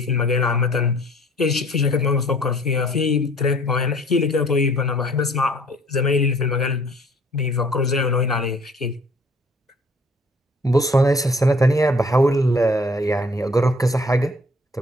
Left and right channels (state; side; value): normal; both; correlation 0.55